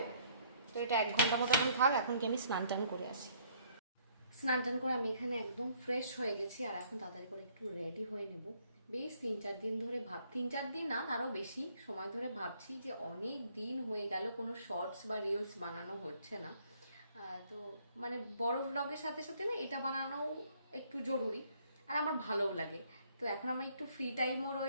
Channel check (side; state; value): both; inverted; correlation -0.64